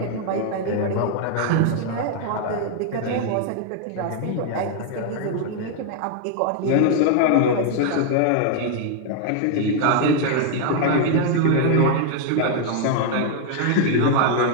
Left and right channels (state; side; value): different; both; correlation 0.00